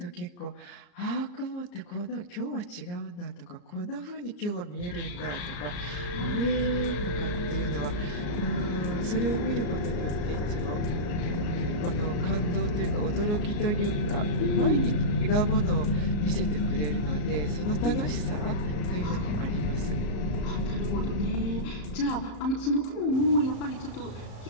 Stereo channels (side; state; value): right; late; 34 ms